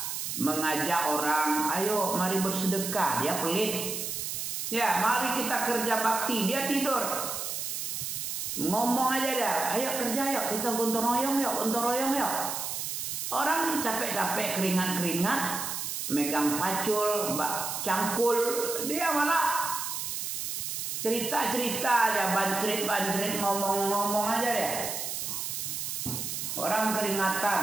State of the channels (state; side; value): noise; right; hiss, 4 dB below the sound